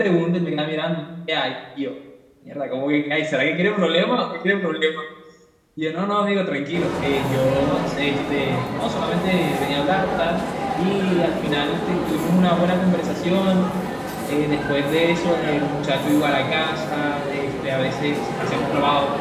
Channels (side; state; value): both; identical; correlation 1.00